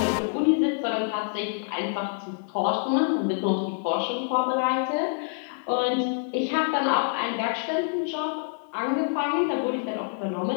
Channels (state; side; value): silent; right; digital silence